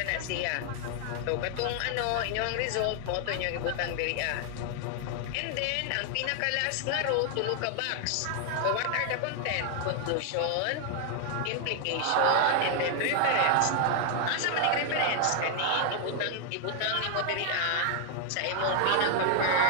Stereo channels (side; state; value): both; different; correlation 0.00